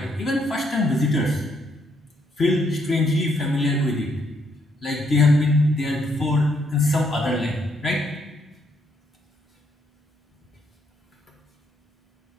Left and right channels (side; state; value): both; normal; correlation 0.73